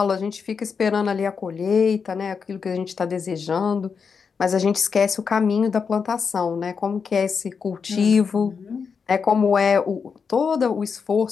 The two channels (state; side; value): quieter; right; 5.9 dB